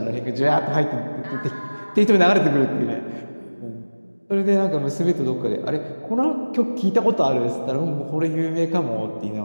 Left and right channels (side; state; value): both; inverted; correlation -1.00